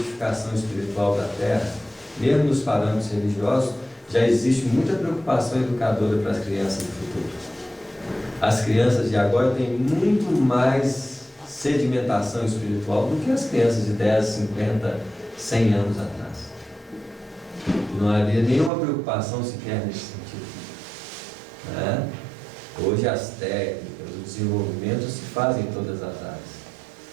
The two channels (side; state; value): left; drops out; at 18.7 s